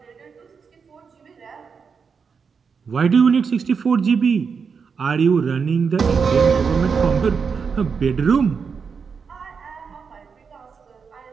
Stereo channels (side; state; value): left; quieter; 5.8 dB